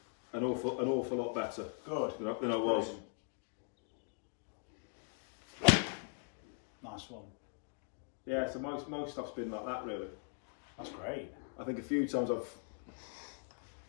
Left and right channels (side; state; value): right; silent; 51 dB below the other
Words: an awful lot better. Good. Than I was. Nice one. Yeah, so most stuff's been like that, really. That's great. I think a few times I've